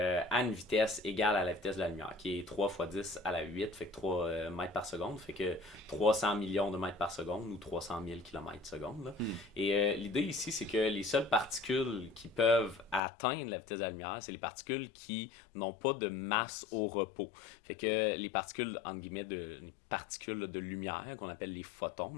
une vitesse égale à la vitesse de la lumière, qui est 3 fois 10 à la 8, fait que 3 mètres par seconde, fait que 300 millions de mètres par seconde ou 300 000 kilomètres seconde. Là. Et l'idée ici, c'est que les seules particules qui peuvent atteindre la vitesse de la lumière, c'est les particules qui n'ont pas de masse au repos. Fait que les particules, entre guillemets, les particules de lumière, qu'on appelle les photons,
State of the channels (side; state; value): right; drops out; at 13.0 s